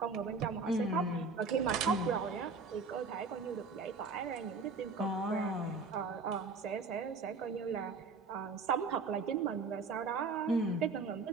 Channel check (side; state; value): left; quieter; 4.4 dB